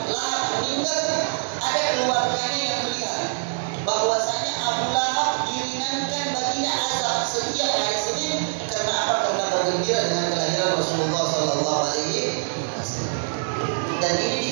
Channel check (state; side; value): silent; left; digital silence